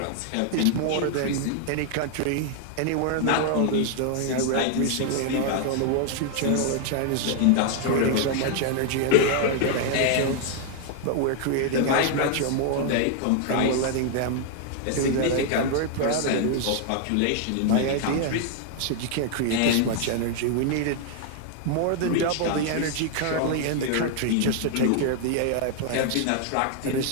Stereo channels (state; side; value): different; both; correlation 0.00